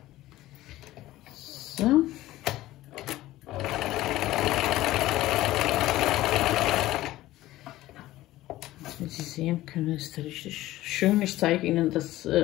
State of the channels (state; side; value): quieter; right; 16.1 dB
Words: So. Wie Sie sehen können, ist richtig schön. Ich zeige Ihnen das